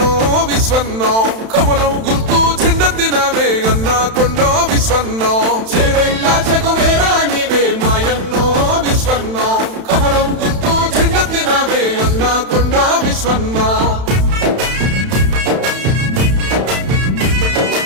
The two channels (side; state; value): left; late; 31 ms